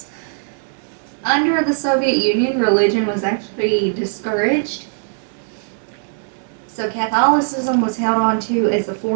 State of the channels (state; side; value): silent; left; 66 dB below the other